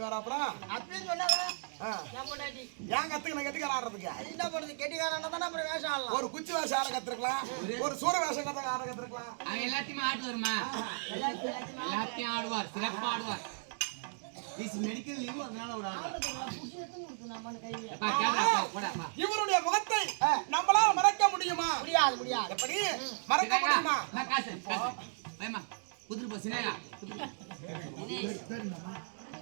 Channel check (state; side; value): silent; left; digital silence